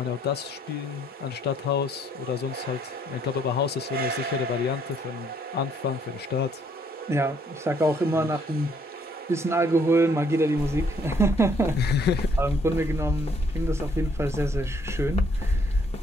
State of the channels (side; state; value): both; normal; correlation 0.67